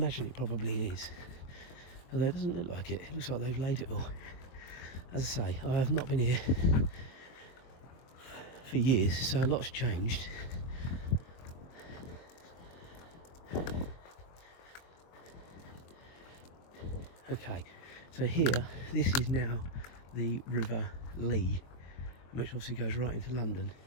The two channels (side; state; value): right; late; 23 ms